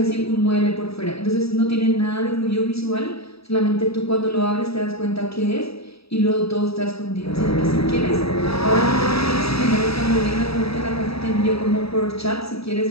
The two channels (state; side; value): late; right; 0.77 ms